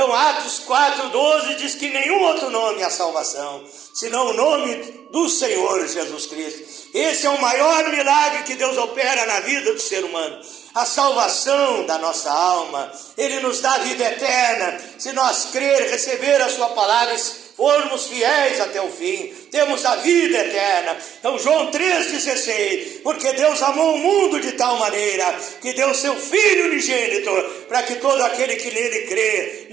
Atos 4,12 diz que nenhum outro nome é salvação, senão o nome do Senhor Jesus Cristo. Esse é o maior milagre que Deus opera na vida do ser humano. A salvação da nossa alma. Ele nos dá vida eterna, se nós crer, receber a sua palavra, formos fiéis até o fim, temos a vida eterna. Então João 3,16, porque Deus amou o mundo de tal maneira que deu seu Filho unigênito, para que todo aquele que nele crê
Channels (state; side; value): quieter; left; 9.5 dB